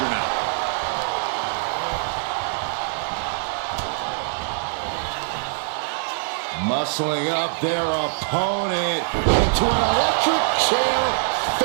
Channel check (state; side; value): silent; left; digital silence